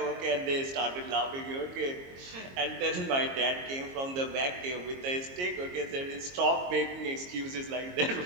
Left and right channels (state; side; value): late; left; 22 ms